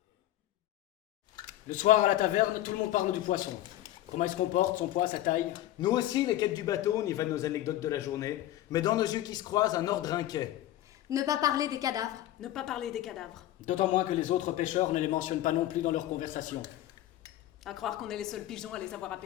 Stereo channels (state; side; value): quieter; right; 14.0 dB